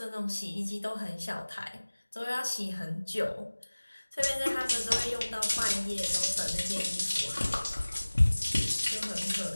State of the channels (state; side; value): inverted; both; correlation -1.00